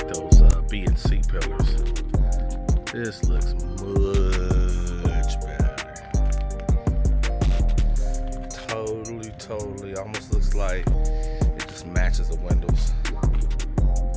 This looks much better. Totally. Almost looks like it just matches the windows.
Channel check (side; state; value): both; identical; correlation 1.00